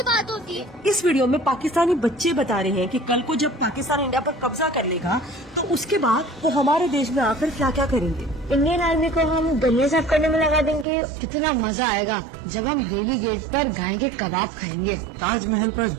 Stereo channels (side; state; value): left; drops out; at 10.9 s